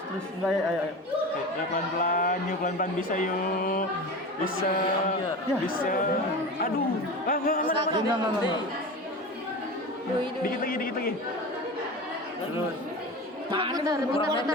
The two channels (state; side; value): normal; both; correlation 0.29